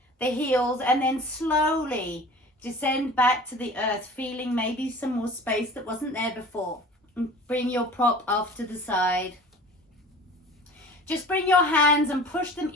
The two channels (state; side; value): normal; both; correlation 0.43